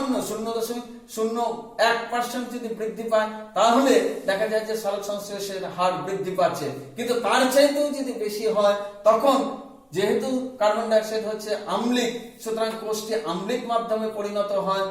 0.01% যদি বৃদ্ধি পায় তাহলে দেখা যায় যে সালোক সংশ্লেষের হার বৃদ্ধি পাচ্ছে। কিন্তু তার চাইতেও যদি বেশি হয় তখন যেহেতু কার্বন ডাই অক্সাইড হচ্ছে আম্লিক, সুতরাং কোষটি আম্লিক মাধ্যমে পরিণত হয়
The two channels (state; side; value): identical; both; correlation 1.00